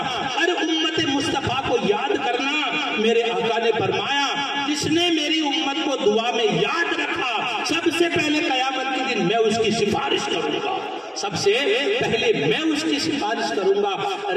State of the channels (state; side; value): identical; both; correlation 1.00